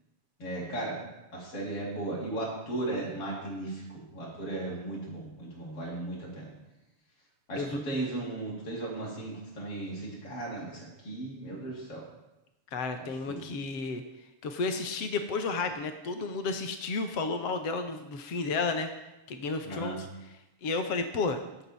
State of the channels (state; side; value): late; right; 7.0 ms